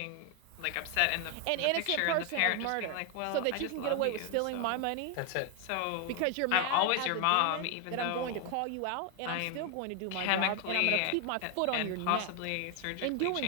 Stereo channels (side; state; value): both; different; correlation 0.01